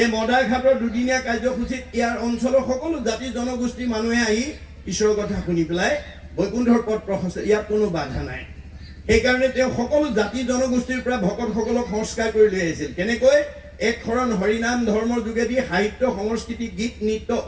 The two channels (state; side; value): identical; both; correlation 1.00